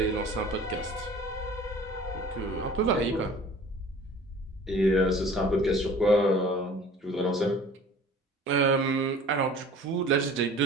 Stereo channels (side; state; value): both; normal; correlation 0.46